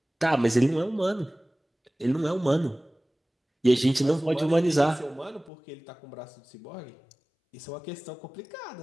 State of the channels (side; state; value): right; drops out; at 5.5 s